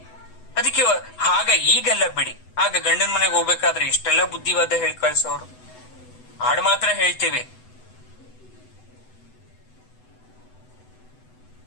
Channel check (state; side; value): late; right; 8.0 ms